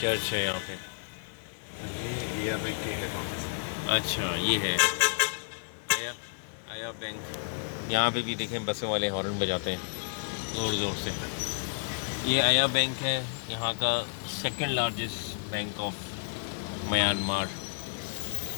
है यहाँ पे। ये बैंक के हेड ऑफिस है। अच्छा, ये है आया बैंक। यहाँ पे भी देखें बसों वाले हॉर्न बजाते हैं ज़ोर ज़ोर से। ये आया बैंक है, यहाँ का second largest bank of Myanmar.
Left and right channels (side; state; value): right; silent; 57 dB below the other